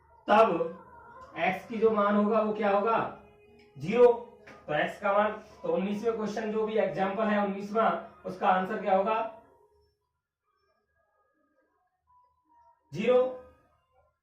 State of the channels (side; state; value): both; identical; correlation 1.00